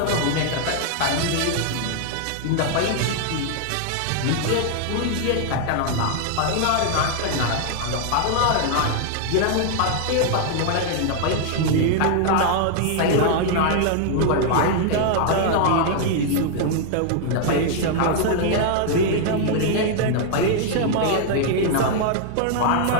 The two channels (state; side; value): different; both; correlation 0.00